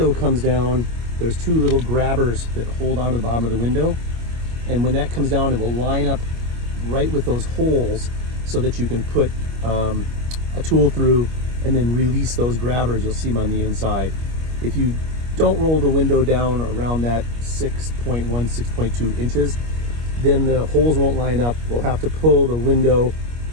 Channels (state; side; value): late; left; 25 ms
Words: comes down, there's 2 little grabbers that hold onto the bottom of the window. And when that comes down, it will line up right with those holes so that you can put a tool through and then release those grabbers. You'll see them on the inside. If you don't roll the window down around that 6.1, 6.2 inches, then the holes won't line up. We'll have to pull the window